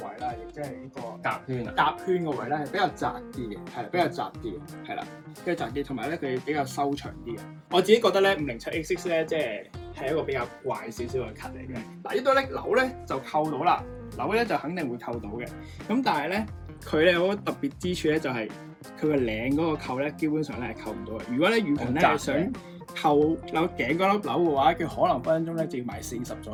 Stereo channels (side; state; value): both; identical; correlation 1.00